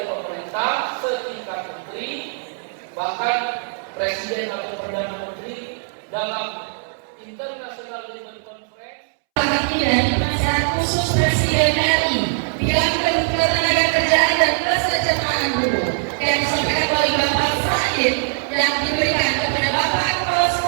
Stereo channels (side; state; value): left; silent; 65 dB below the other